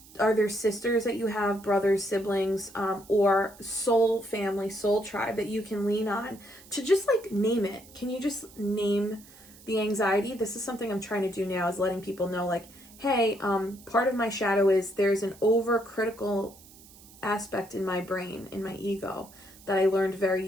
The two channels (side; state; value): right; noise; hiss, 22 dB below the sound